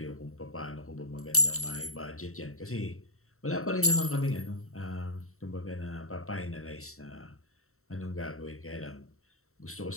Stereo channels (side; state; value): right; late; 0.63 ms